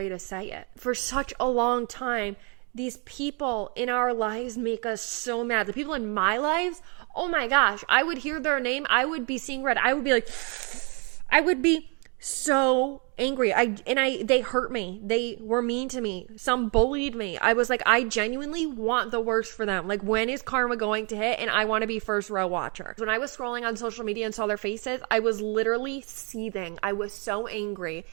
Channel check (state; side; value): quieter; left; 34.7 dB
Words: to say it. For such a long time, these people in our lives make us so mad. The people in my lives, oh my gosh, I would hear their name. I would be seeing red. I would be like, I would be so angry. They hurt me. They were mean to me. Some bullied me. I was like, I genuinely want the worst for them. Like, when is karma going to hit? And I want to be first row watcher. When I was scrolling on social media and saw their faces, I was literally seething. I was so angry.